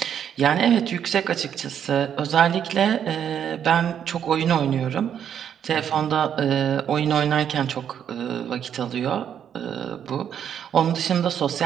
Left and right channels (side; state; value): left; quieter; 8.9 dB